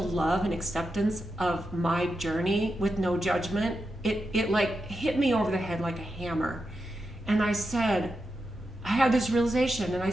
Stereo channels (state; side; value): normal; both; correlation 0.88